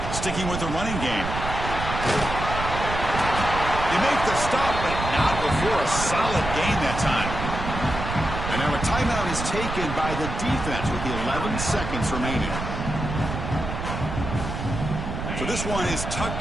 Sticking with the running game. They make the stop, but not before a solid gain that time. And now a timeout is taken by the defense with the 11 seconds remaining. So this one is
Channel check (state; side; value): noise; right; rumble, 5 dB below the sound